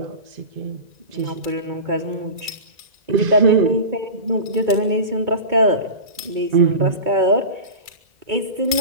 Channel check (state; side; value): late; left; 1.5 ms